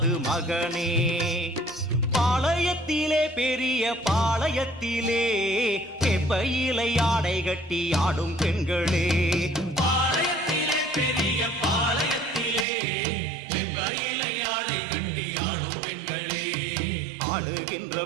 மகனே. பாளையத்திலே பெரிய பாளையத்திலே வேப்பையிலை ஆடை கட்டி ஆடும் பெண்களே. பாளையத்திலே பெரிய பாளையத்திலே வேப்பையிலை ஆடை கட்டி ஆடும் பெண்களே. ஆடுகின்ற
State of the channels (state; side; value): drops out; left; at 12.7 s